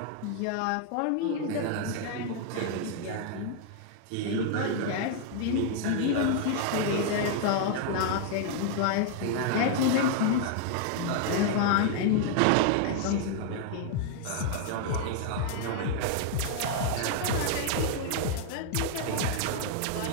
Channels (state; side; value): different; both; correlation 0.00